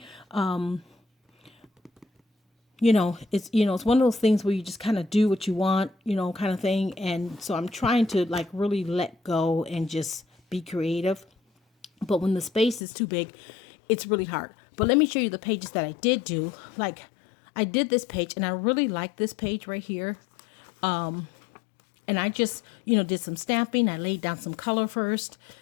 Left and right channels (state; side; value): drops out; right; at 12.8 s